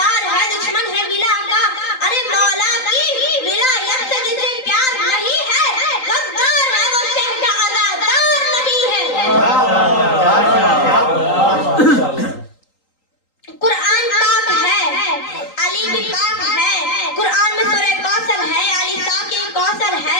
है दुश्मन है विला का, अरे मौला की विलायत से जिसे प्यार नहीं है, गद्दार है वो शह का अदादार नहीं है। कुरान पाक है, अली भी पाक है, कुरान में सूरह कौसर है, अली साकिब कौसर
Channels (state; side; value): late; right; 3.8 ms